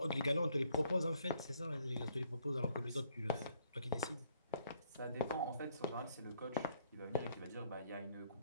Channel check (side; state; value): both; inverted; correlation -0.67